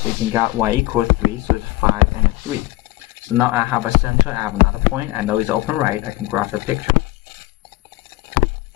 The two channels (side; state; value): right; quieter; 19.3 dB